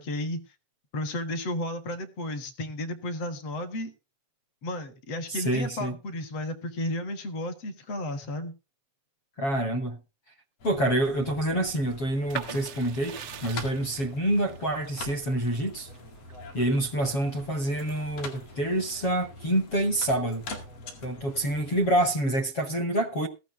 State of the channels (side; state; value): right; late; 7.3 ms